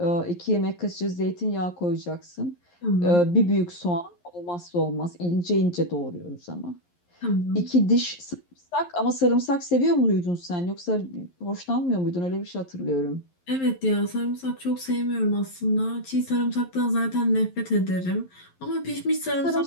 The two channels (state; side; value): late; right; 11 ms